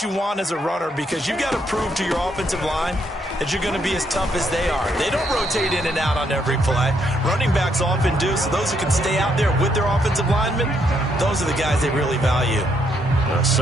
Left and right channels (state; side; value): normal; both; correlation 0.74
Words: you want as a runner because you've got to prove to your offensive line that you're going to be as tough as they are. They don't rotate in and out on every play. Running backs often do, so those who can stay out there with their offensive linemen, those are the guys they really value. A